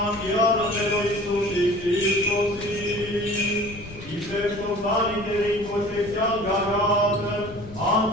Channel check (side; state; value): left; noise; rumble, 16 dB below the sound